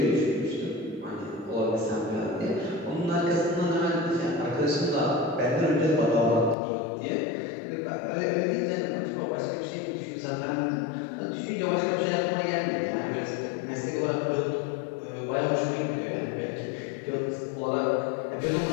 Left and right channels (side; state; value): right; drops out; at 6.6 s